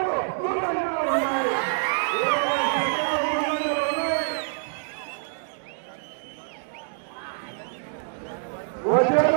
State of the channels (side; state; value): left; silent; digital silence